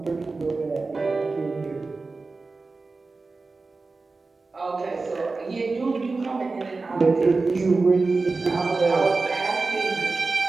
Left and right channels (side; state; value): left; quieter; 3.8 dB